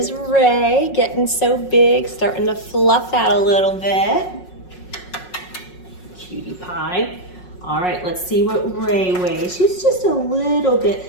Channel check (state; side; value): late; right; 5.5 ms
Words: Ray, getting so big, starting to fluff out a little bit. Cutie pie. All right, let's see what Ray weighs. She's just a little bit